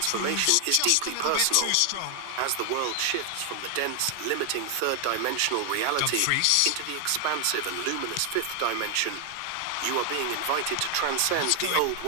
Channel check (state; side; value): different; both; correlation 0.00